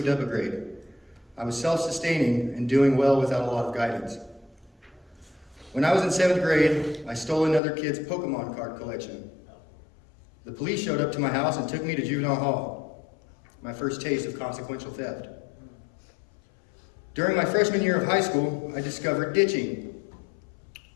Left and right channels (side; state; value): right; drops out; at 7.6 s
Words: up a grade. I was self-sustaining and doing well without a lot of guidance. When I was in 7th grade, I stole another kid's Pokemon card collection. The police showed up to my house and took me to juvenile hall, my first taste of consequential theft. During my freshman year of high school, I discovered ditching.